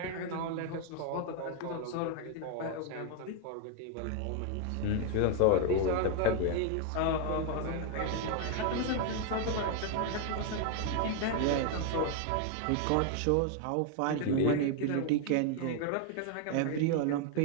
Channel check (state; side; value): different; both; correlation 0.01